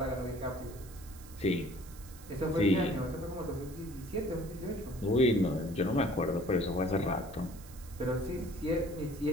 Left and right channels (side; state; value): right; noise; hiss, 20 dB below the sound